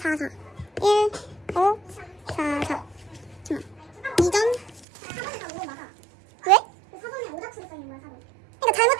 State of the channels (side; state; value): left; drops out; at 4.9 s